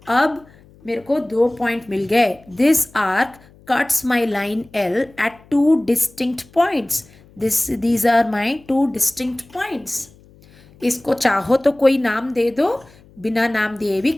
अब मेरे को 2 पॉइंट मिल गए। This arc cuts my line L at 2 distinct points. These are my 2 distinct points. इसको चाहो तो कोई नाम दे दो, बिना नाम दिए भी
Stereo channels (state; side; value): noise; left; hum, 27 dB below the sound